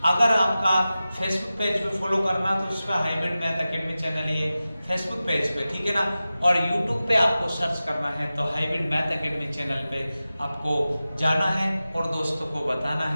अगर आपका फेसबुक पेज पे फॉलो करना तो उस पर हाइब्रिड मैथ एकेडमी चैनल ही है फेसबुक पेज पे, ठीक है ना। और यूट्यूब पे आपको सर्च करना है तो हाइब्रिड मैथ एकेडमी चैनल पे आपको जाना है और दोस्तों को बताना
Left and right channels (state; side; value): inverted; both; correlation -0.95